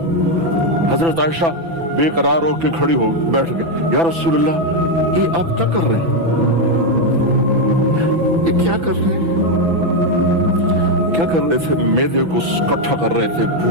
حضرت عائشہ بے قرار ہو کے کھڑی ہو بیٹھ گئے، یا رسول اللہ یہ آپ کیا کر رہے ہیں، یہ کیا کر رہے ہیں؟ کیا کر رہے تھے؟ معدے کو کٹھا کر رہے تھے،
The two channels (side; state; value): left; late; 6.0 ms